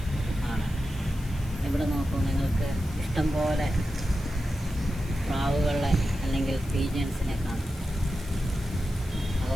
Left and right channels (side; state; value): left; noise; hiss, 20 dB below the sound